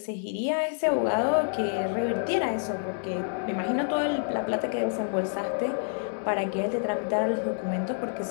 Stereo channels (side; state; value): right; silent; digital silence